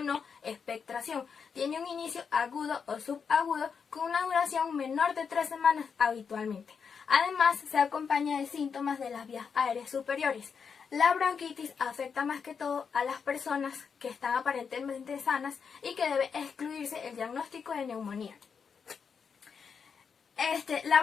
expectoración. Tiene un inicio agudo o subagudo con una duración menor de 3 semanas habitualmente. Además, se acompaña de síntomas de las vías aéreas superiores. La bronquitis afecta más que todo a las personas que están aparentemente sanas y que debe excluirse el diagnóstico de neumonía. La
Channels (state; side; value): quieter; right; 6.2 dB